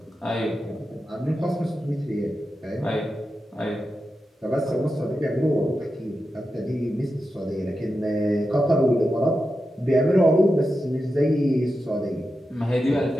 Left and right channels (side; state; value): both; normal; correlation 0.90